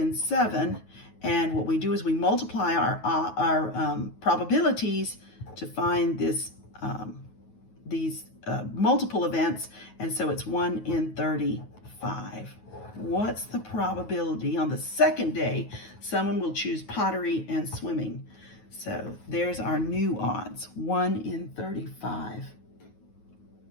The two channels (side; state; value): right; late; 9.3 ms